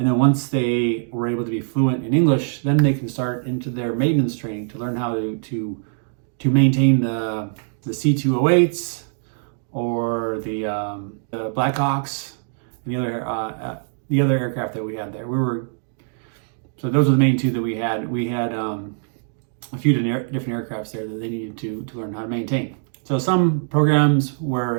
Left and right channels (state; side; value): silent; left; digital silence